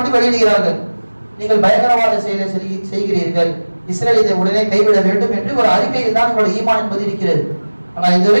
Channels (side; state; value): both; inverted; correlation -1.00